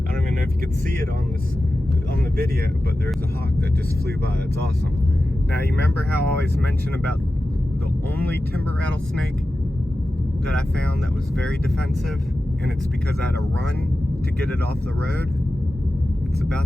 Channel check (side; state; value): both; normal; correlation 0.93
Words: I don't even know if you could see it on the video, but there's a hawk that just flew by. That's awesome. Now you remember how I always mention about the only timber rattlesnake that I found that was very defensive, and it's because I had to run to get it off the road. It's